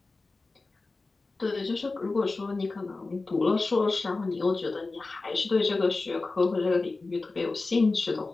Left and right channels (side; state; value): right; quieter; 3.6 dB